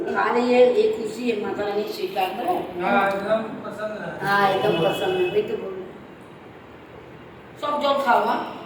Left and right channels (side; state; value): both; identical; correlation 1.00